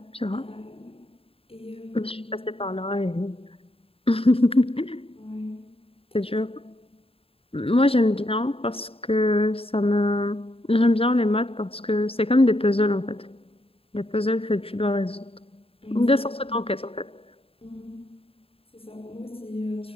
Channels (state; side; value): late; right; 0.27 ms